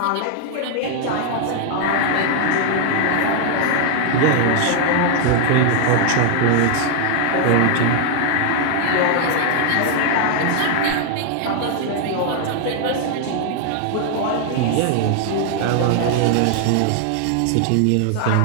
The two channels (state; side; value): different; both; correlation 0.00